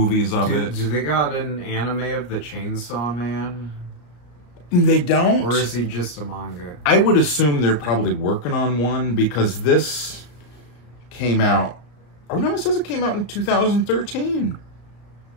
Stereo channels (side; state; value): right; late; 34 ms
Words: of it. Do they got an anime of the Chainsaw Man? They don't. Or is he just a manga? I would assume they're probably working on one because this came out. Oh no, it says it came out in 2013.